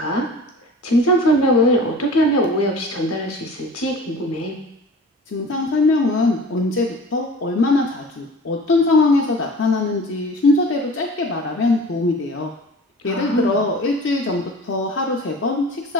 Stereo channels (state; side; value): normal; both; correlation 0.42